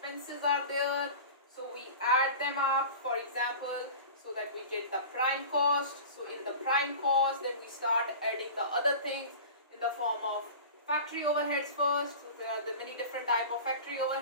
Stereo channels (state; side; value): inverted; both; correlation -0.36